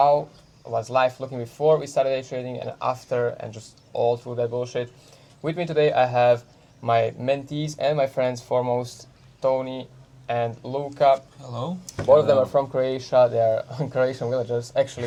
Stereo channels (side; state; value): both; identical; correlation 1.00